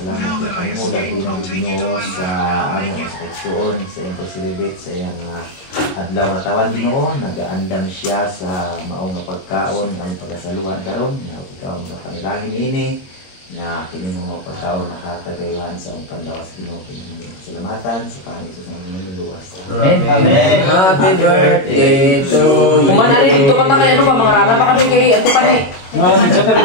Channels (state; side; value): late; right; 22 ms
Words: na kami mo dahil ng Ginoo sa among inspeksyon, sa iyang pag-celebrate, sa iyang adlaw na tawan Ginoo, nagaandam siya sa maong nga pagkaon ang pagasaluhan karon, nga ikaw mga panalangin ini nga kini mo pagkaon makatagayan sa ang panlawas Ginoo, kini mo pasalamatan sa Panginoon Hesus nga manluluwas. Amen. Amen. Happy birthday to you. Kumana rin dito pa tayo, ano ba mga anak pa kami kay ito pa ni.